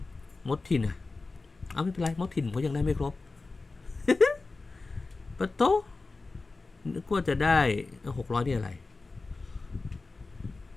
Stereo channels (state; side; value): quieter; right; 3.7 dB